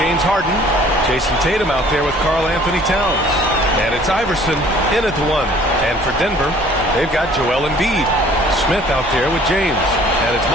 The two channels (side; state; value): right; noise; rumble, 17 dB below the sound